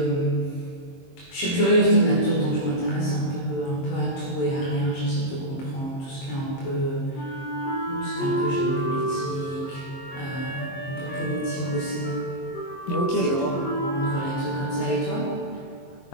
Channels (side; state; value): right; late; 22 ms